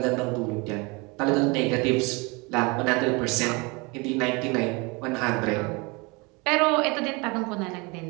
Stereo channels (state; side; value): quieter; left; 27.5 dB